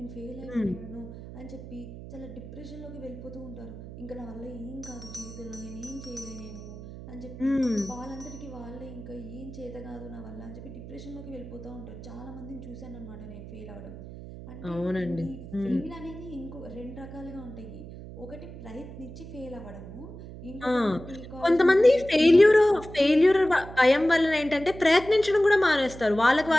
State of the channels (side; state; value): right; noise; hum, 13 dB below the sound